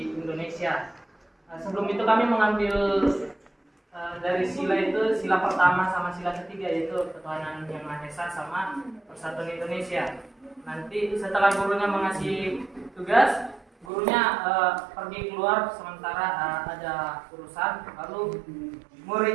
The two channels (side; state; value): left; drops out; at 13.9 s